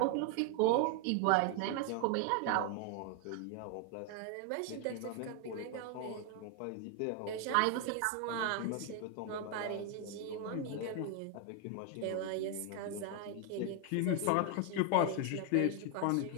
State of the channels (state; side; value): different; both; correlation 0.01